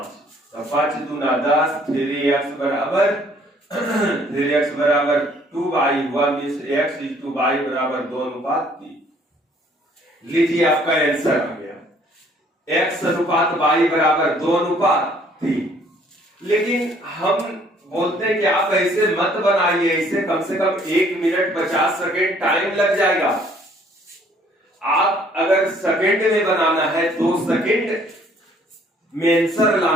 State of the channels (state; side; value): normal; both; correlation 0.60